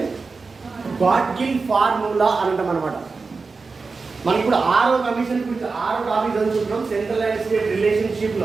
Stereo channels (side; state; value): left; quieter; 4.3 dB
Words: Gadgil formula అని అంటాం అనమాట. మనకి ఇప్పుడు 6వ కమిషన్ గురించి 6వ టాపిక్ చదువుకుంటున్నాం, సెంట్రల్ అండ్ స్టేట్ రిలేషన్షిప్